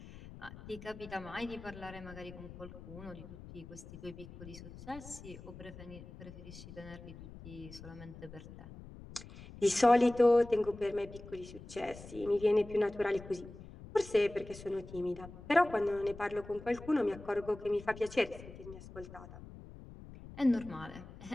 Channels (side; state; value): left; noise; rumble, 15 dB below the sound